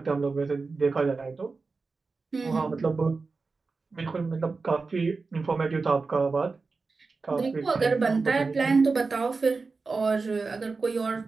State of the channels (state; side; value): quieter; left; 4.2 dB